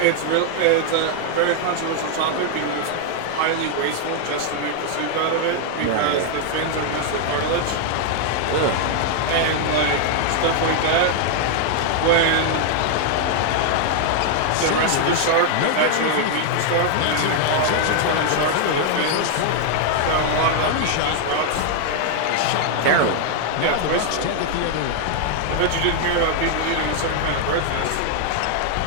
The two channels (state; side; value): different; both; correlation 0.00